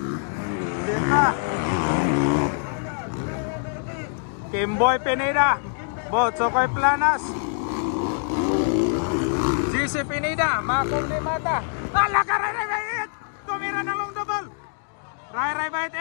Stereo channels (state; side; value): silent; right; digital silence